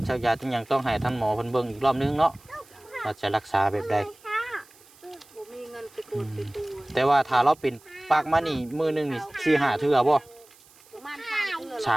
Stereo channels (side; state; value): right; noise; hiss, 26 dB below the sound